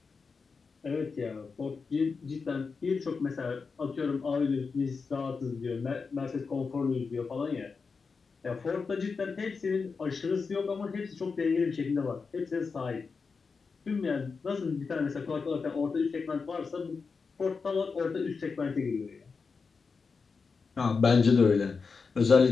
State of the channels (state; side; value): quieter; right; 4.9 dB